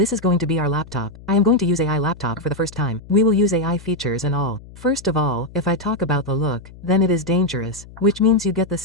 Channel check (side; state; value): left; noise; hum, 19 dB below the sound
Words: is going to be our laptop. I am going to use AI laptop for the first time. We will use AI features and all. First of all, if I talk about the look, then it is dangerous, which means you get the